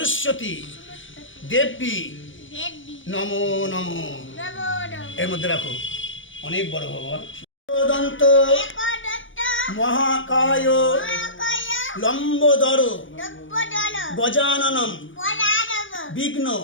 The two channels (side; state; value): right; late; 0.56 ms